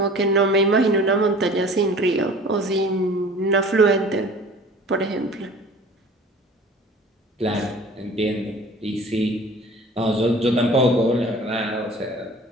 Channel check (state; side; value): normal; both; correlation 0.45